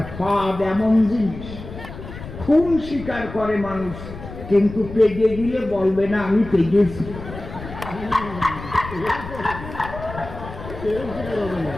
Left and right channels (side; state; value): left; noise; rumble, 12 dB below the sound